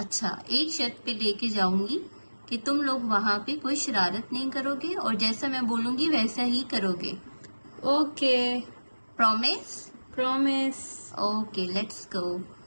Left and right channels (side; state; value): both; inverted; correlation -1.00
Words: एक शर्त पे लेके जाऊंगी कि तुम लोग वहाँ पे कोई शरारत नहीं करोगे और जैसा मैं बोलूंगी वैसा ही करोगे। Okay, promise? Promise. Okay, let's go.